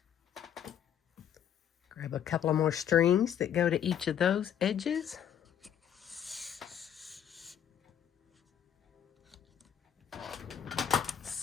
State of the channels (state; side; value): quieter; right; 9.2 dB